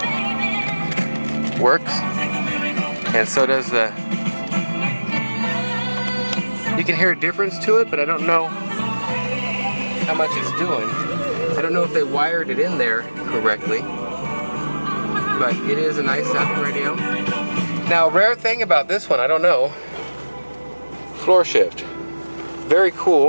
works, and so does the. You can hear a difference to it, but I don't know how much it's doing. I don't know if they wired it in there correctly, but it is a nice sounding radio. Now, rare thing about this one, I don't know. Floor shift, very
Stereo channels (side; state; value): both; inverted; correlation -1.00